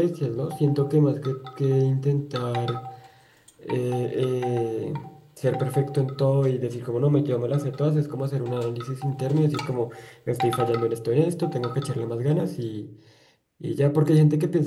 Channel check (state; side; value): identical; both; correlation 1.00